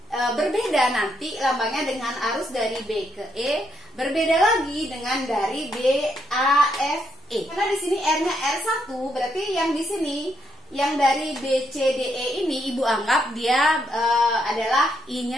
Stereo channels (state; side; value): normal; both; correlation 0.77